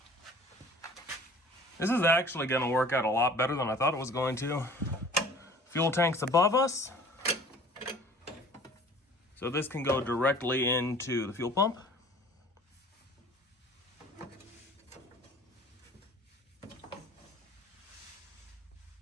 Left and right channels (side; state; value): both; normal; correlation 0.48